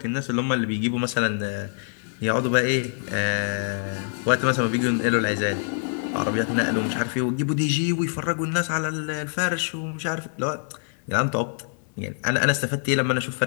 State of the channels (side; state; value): right; silent; digital silence